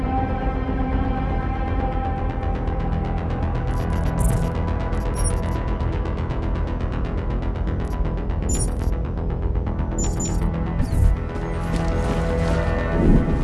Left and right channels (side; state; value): both; identical; correlation 1.00